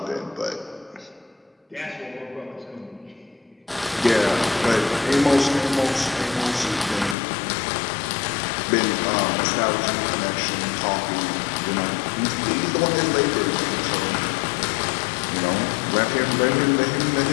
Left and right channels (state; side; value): drops out; right; at 7.2 s